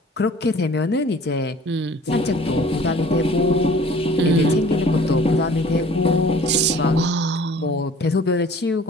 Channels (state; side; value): normal; both; correlation 0.49